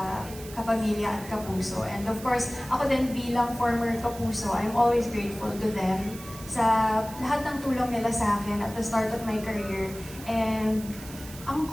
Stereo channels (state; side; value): noise; right; hiss, 16 dB below the sound